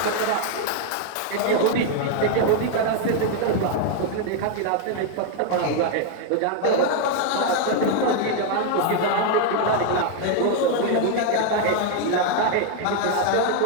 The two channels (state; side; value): different; both; correlation 0.00